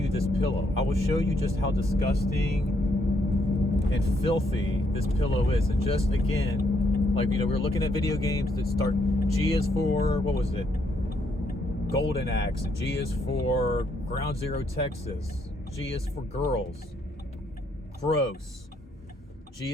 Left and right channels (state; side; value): normal; both; correlation 0.73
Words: this pillow. I will show you just how disgusting and filthy this pillow is. And just, again, like, you know, we were looking at video games that start, G is for, what was it? Golden Axe. G is for Ground Zero Texas. G is for girls. Gross. G